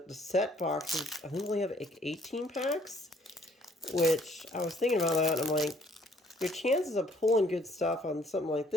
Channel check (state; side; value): normal; both; correlation 0.62